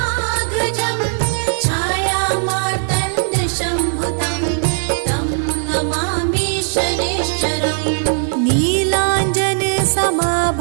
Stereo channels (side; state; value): left; silent; 61 dB below the other